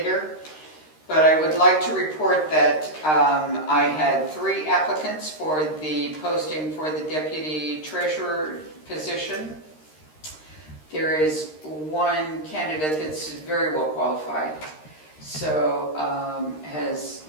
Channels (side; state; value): right; late; 13 ms